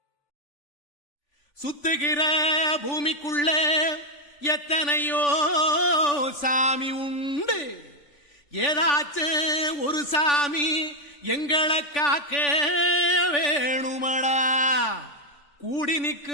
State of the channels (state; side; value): late; right; 3.5 ms